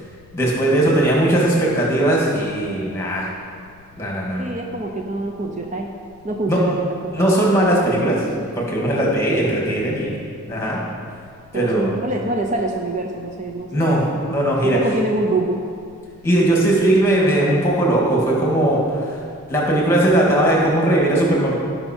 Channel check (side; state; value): left; noise; rumble, 29 dB below the sound